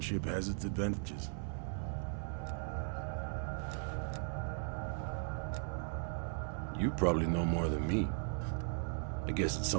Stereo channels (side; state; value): left; silent; 53 dB below the other